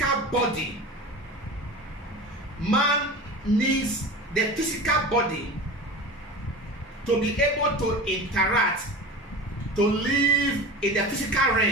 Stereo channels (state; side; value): normal; both; correlation 0.32